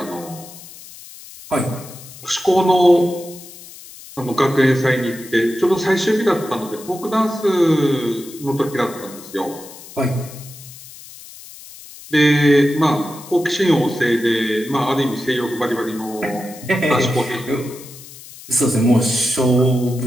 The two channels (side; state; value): left; noise; hiss, 17 dB below the sound